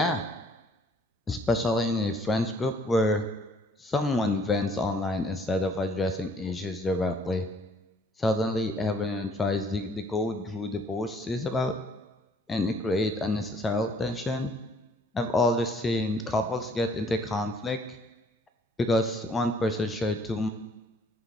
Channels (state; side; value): normal; both; correlation 0.60